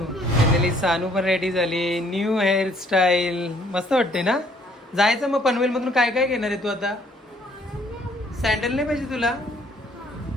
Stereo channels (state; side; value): normal; both; correlation 0.63